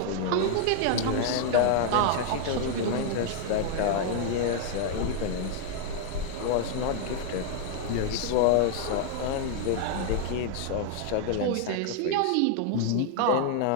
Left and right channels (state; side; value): different; both; correlation 0.00